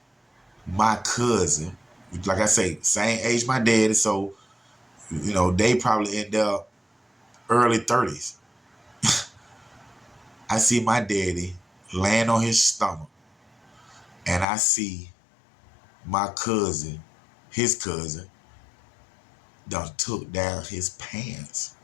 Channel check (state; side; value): drops out; right; at 14.5 s